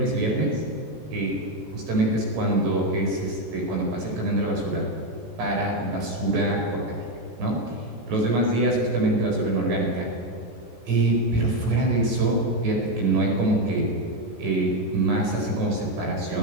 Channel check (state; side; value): late; left; 14 ms